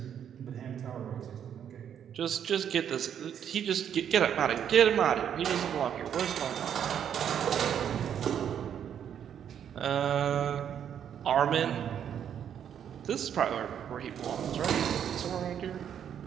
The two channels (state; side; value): quieter; left; 9.0 dB